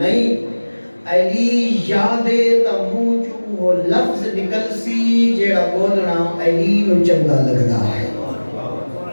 علی یادے تا منہ چوں وہ لفظ نکل سی جیڑا بولنا علی نو چنگا لگدا ہے.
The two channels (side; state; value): both; inverted; correlation -1.00